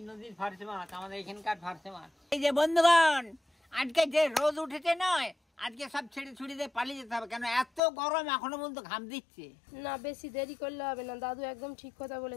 নদীর ফারসে মাছ আমাদের এখানকার ফারসে মাছ। এই যে বন্ধুগণ, আজকে যে রোদ উঠেছে নয়, আজকে সব ছেড়ে ছুড়ে দিয়ে পালিয়ে যেতে হবে, কেন এত গরম, এখনো পর্যন্ত ঘাম দিচ্ছে না। বেশি দেরি করলে হবে না, দাদু একদম ঠিক কথা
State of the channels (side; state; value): right; drops out; at 7.8 s